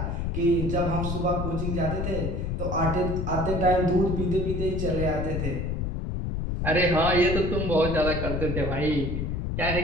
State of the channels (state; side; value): noise; left; rumble, 2 dB below the sound